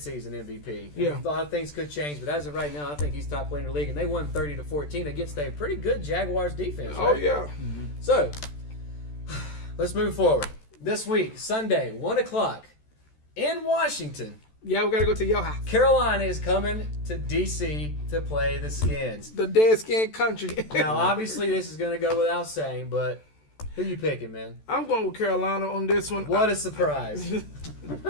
MVP. Yeah. A lot of things could change, but as of right now, I think he's top player in the league, and they won 30-14 against a pretty good Jaguars defense. Oh right? yeah. So, let's move forward. This week, Sunday, 1 o'clock, in Washington, Yeah, we gotta go to your house. Carolina is coming to D.C. to play the Skins. The dead skin country. Now, obviously, this is going to go without saying, but who you picking, man? I'm going with Carolina on this one. What a surprise.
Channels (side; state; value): right; late; 14 ms